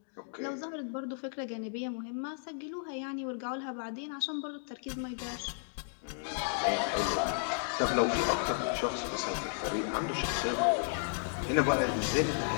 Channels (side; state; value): right; silent; digital silence